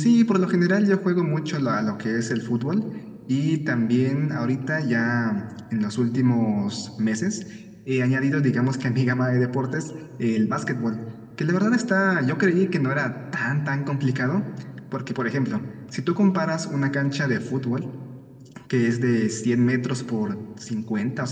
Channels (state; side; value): identical; both; correlation 1.00